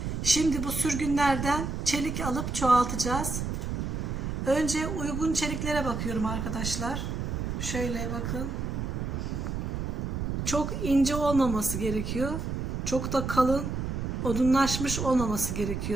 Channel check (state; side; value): noise; right; rumble, 3 dB below the sound